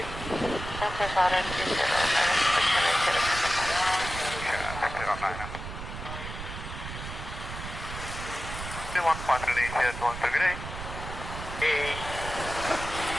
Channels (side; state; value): right; noise; rumble, 9 dB below the sound